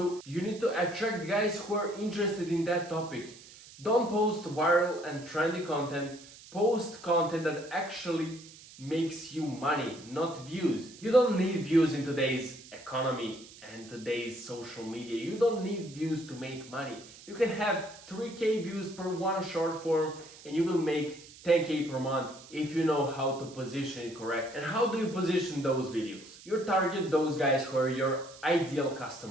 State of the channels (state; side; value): noise; right; hiss, 19 dB below the sound